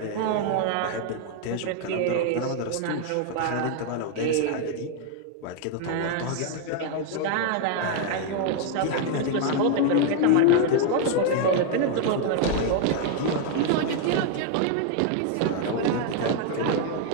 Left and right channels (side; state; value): both; different; correlation 0.00